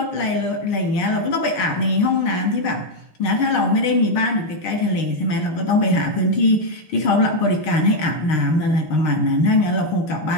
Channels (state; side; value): late; right; 6.5 ms